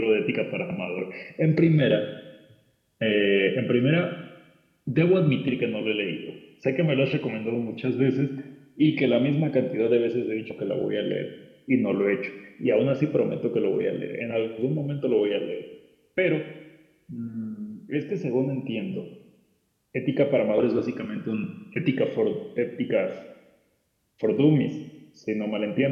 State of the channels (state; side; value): identical; both; correlation 1.00